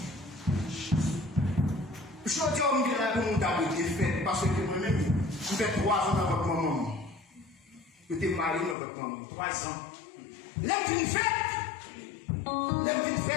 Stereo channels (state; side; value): drops out; right; at 8.8 s